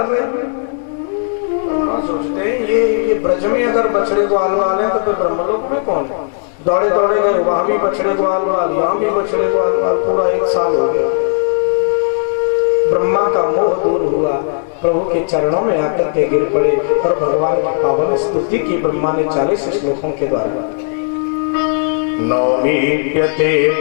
रहे हैं। सोचते हैं ये ब्रज में अगर बछड़े ग्वाल वाल हैं तो फिर ब्रह्मलोक में कौन है। दौड़े दौड़े गए, वहां भी बछड़े ग्वाल वाल, यहाँ भी बछड़े ग्वाल वाल। पूरा 1 साल हो गया। ब्रह्मा का मोह दूर हुआ, प्रभु के चरणों में आकर के गिर पड़े और भगवान की पावन स्तुति की ब्रह्मा ने 40 श्लोकों के द्वारा। नौमीप्यते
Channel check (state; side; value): silent; right; digital silence